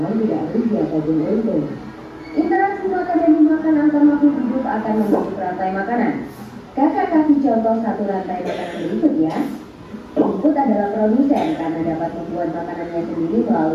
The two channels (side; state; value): both; identical; correlation 1.00